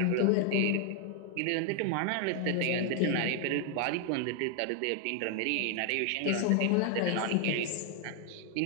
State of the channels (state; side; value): different; both; correlation 0.00